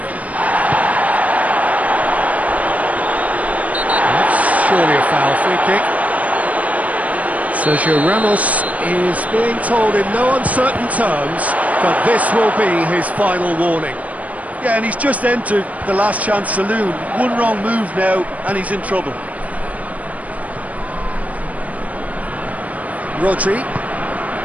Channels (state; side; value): late; left; 0.070 ms